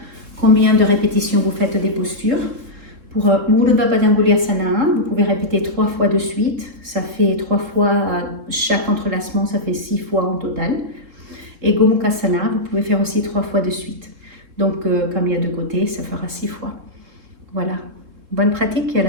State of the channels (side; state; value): left; late; 3.8 ms